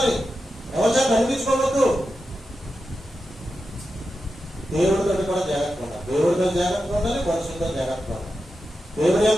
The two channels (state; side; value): normal; both; correlation 0.90